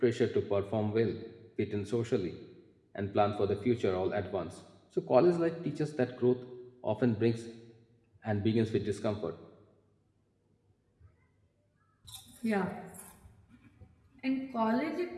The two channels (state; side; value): identical; both; correlation 1.00